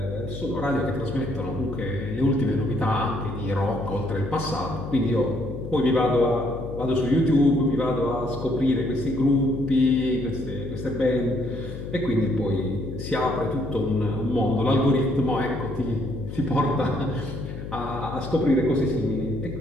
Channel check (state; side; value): noise; left; hum, 9 dB below the sound